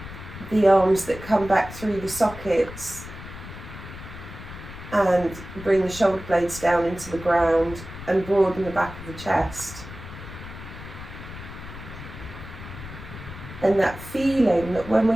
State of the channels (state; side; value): noise; left; rumble, 13 dB below the sound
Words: The arms that come back through the sockets and bring the shoulder blades down into the ground and broaden the back of the chest. And that feeling that when